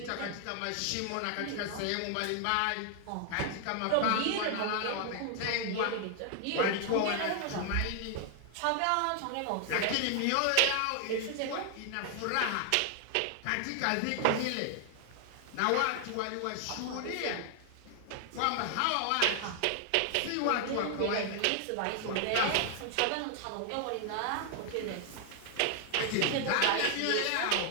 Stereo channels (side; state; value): both; different; correlation 0.00